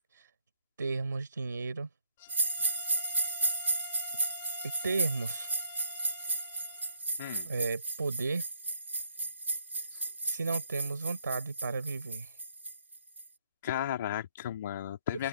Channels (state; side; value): inverted; both; correlation -0.73